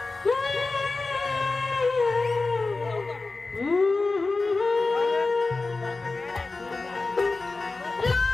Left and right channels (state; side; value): quieter; right; 3.6 dB